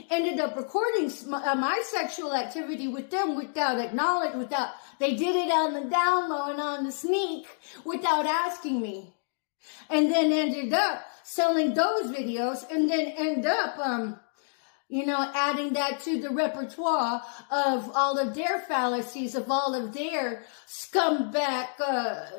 ended up recording my sexual activity with them without they did it on the down low and on the sneak without asking me. And then ended up selling those videos, and then end up, adding that to the repertoire of all of their fallacies, of all of their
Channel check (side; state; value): right; silent; digital silence